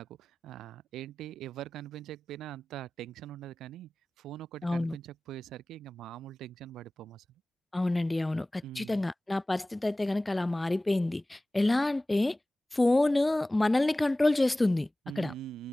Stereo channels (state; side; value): normal; both; correlation 0.98